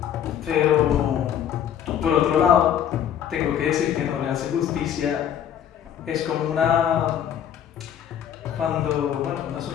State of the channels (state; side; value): quieter; right; 9.6 dB